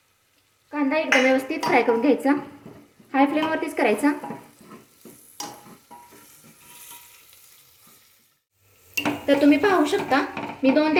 कांदा एकदम व्यवस्थित फ्राय करून घ्यायचा, हाय फ्लेमवरतीच करायचा। तर तुम्ही पाहू शकता मी 2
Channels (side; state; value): both; identical; correlation 1.00